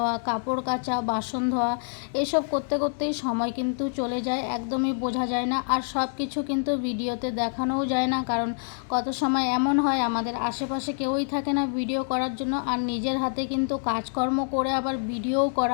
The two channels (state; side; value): silent; right; digital silence